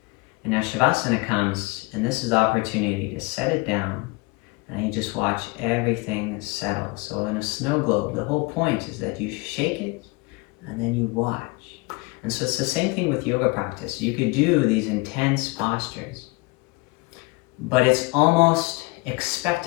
and now Shavasana comes, and this is the opportunity to set it down, and you just watch everything settle. So in a snow globe, the whole point is that you shake it, and then you watch. And so it's the same thing with yoga practice. You could do these intense postures, but it's almost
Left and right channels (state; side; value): quieter; right; 25.9 dB